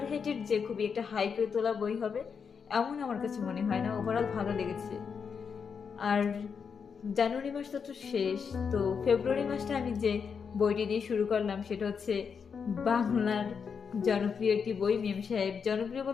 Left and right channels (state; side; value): quieter; right; 6.3 dB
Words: যে খুবই একটা হাইপে তোলা বই হবে এমন আমার কাছে মনে হয় না। ওভারঅল ভালো লেগেছে। আর জানুয়ারি মাস তো শেষ, তো ফেব্রুয়ারি মাসটা আমি যে বইটি দিয়ে শুরু করলাম সেটা বাংলার জনপ্রিয় একটি বই, মেম সাহেব। জনপ্রিয়